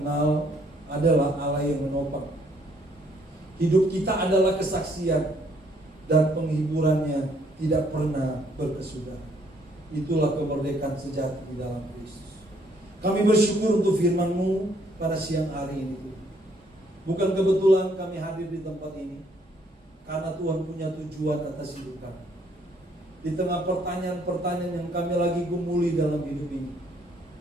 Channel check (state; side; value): normal; both; correlation 0.67